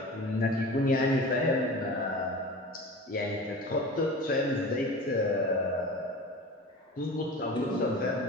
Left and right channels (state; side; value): normal; both; correlation 0.35